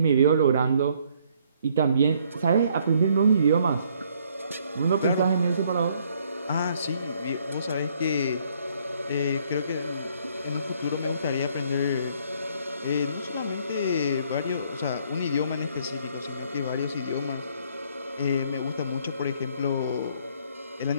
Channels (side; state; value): both; inverted; correlation -0.65